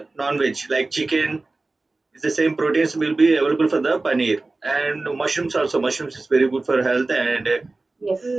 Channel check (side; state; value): left; quieter; 3.3 dB